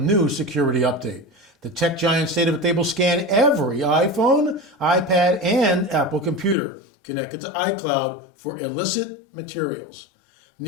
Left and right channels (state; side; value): drops out; right; at 6.6 s